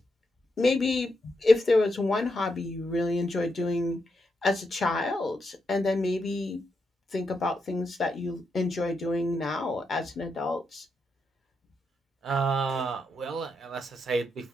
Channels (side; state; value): both; normal; correlation 0.83